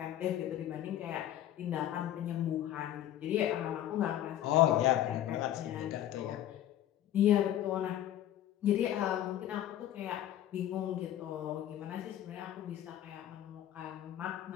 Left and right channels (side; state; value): right; quieter; 12.1 dB